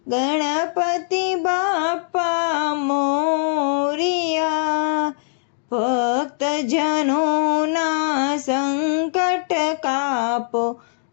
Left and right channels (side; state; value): right; silent; 65 dB below the other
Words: ગણપતિ બાપા મોરિયા. ભક્તજનોના સંકટ કાપો